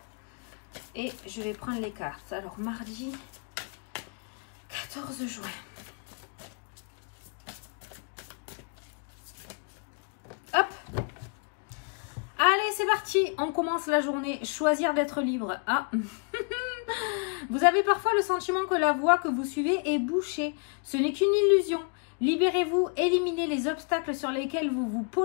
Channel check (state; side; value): quieter; right; 38.4 dB